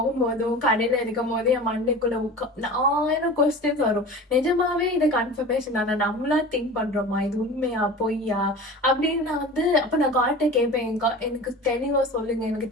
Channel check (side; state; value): both; normal; correlation 0.36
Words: கடையில இருக்கும் போது என் மண்டைக்குள்ள 1000 கொஸ்டின்ஸ் வரும். நிஜமாவே இது கன்ஃபர்மேஷன் தானே, நம்மளா திங்க் பண்றோமா, இது உண்மையா பொய்யா அப்படின்னு நான் வந்து அப்ப நான் காட்ட கேட்பேன். எனக்கு தெளிவா சொல்லுங்க, எனக்கு